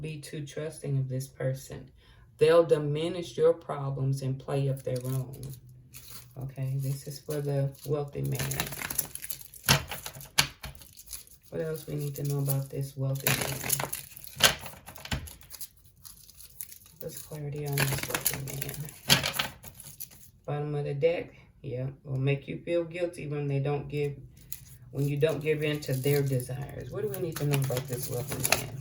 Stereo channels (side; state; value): both; identical; correlation 1.00